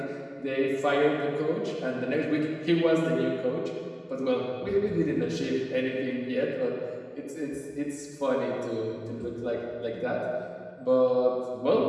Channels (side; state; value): both; identical; correlation 1.00